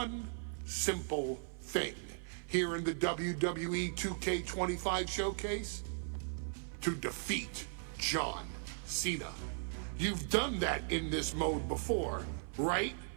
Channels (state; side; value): silent; left; 53 dB below the other